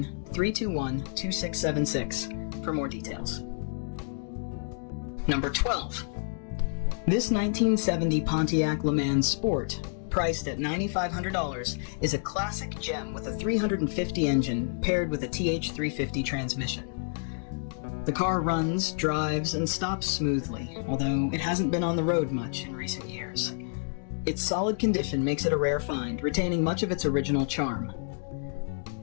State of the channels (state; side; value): silent; right; digital silence